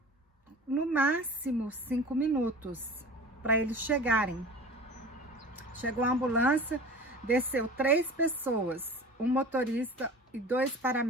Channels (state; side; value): normal; both; correlation 0.38